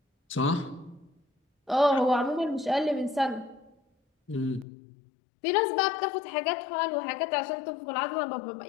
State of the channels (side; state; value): right; drops out; at 4.7 s